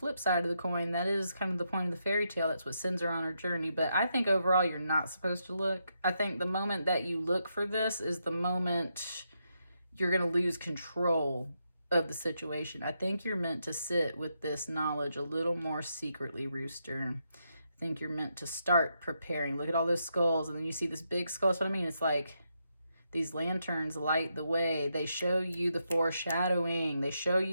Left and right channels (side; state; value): both; inverted; correlation -0.82